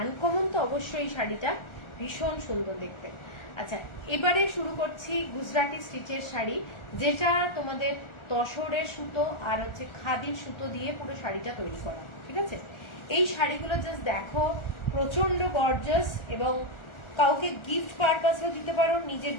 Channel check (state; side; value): late; right; 1.4 ms